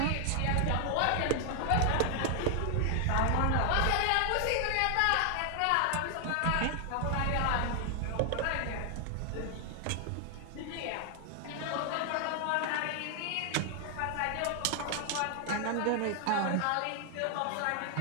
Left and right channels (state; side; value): different; both; correlation 0.00